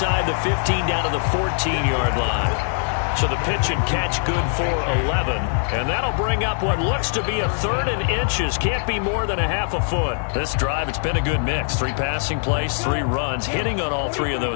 the 15 down to the 14-yard line. So the pitch and catch good for 11. And that'll bring up what looks to be a 3rd and inches. Can't be more than a half a foot. This drive, it's been a good mix. 3 passing plays, 3 runs, hitting on all 3 of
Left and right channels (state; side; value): silent; right; 60 dB below the other